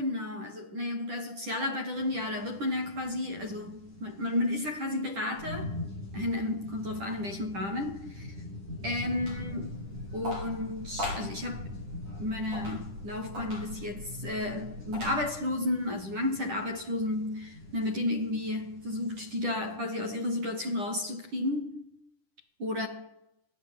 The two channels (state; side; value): late; left; 10 ms